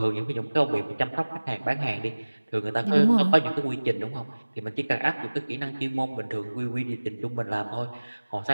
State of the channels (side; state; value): both; inverted; correlation -1.00